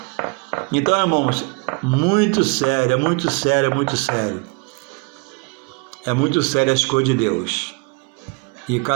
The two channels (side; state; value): left; quieter; 31.1 dB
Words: Então, irmãos, muito sério, é muito sério, é muito sério. É muito sério as coisas de Deus. E